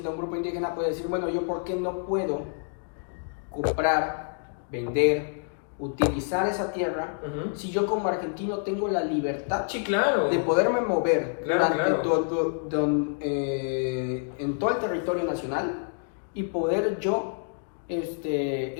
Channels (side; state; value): right; silent; digital silence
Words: a un grupo indígena puede decir, bueno, yo ¿por qué no puedo comprar, vender, utilizar esa tierra Ujú. si yo como argentino tengo la libertad Sí, claro. de poderme mover Claro, durante claro. en todo el territorio nacional, y poder yo